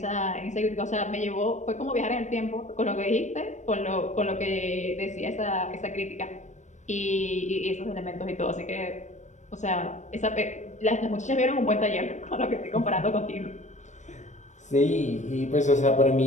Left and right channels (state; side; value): late; right; 0.34 ms